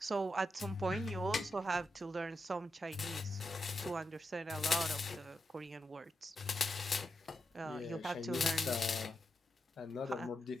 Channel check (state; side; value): normal; both; correlation 0.87